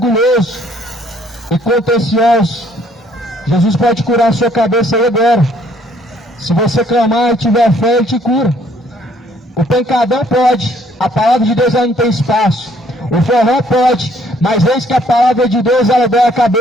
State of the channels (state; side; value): normal; both; correlation 0.63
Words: e contencioso. Jesus pode curar a sua cabeça aí agora. Se você clamar e tiver fé, Ele te cura. O pancadão pode, a palavra de Deus ela não tem espaço. O forró pode, mas eis que a palavra de Deus ela dói a